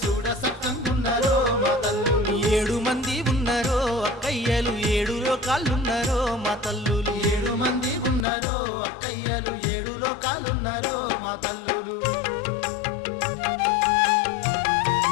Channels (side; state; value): right; drops out; at 8.2 s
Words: చూడ సక్కంగున్నారో మా తల్లులు 7 మంది ఉన్నారో అక్కయ్యలు 7 లోకాలున్నారో మా తల్లులు 7 మంది ఉన్నారో అక్కయ్యలు 7 లోకాలున్నారో మా తల్లులు